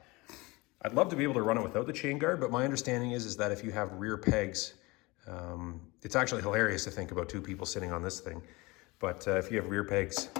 I'd love to be able to run it without the chain guard, but my understanding is that if you have rear pegs, it's actually hilarious to think about 2 people sitting on this thing. But if you have rear pegs,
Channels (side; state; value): right; quieter; 23.7 dB